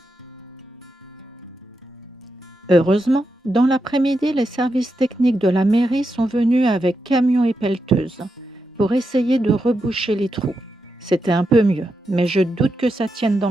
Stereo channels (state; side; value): normal; both; correlation 0.86